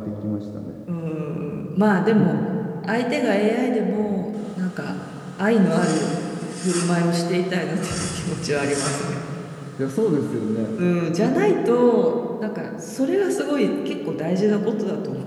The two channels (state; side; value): identical; both; correlation 1.00